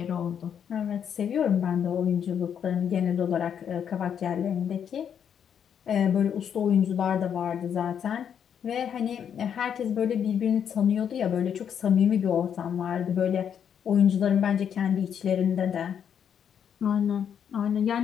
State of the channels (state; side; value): quieter; right; 8.3 dB